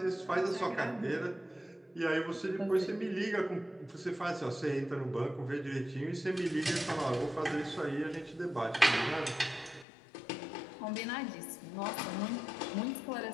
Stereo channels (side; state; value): right; drops out; at 9.9 s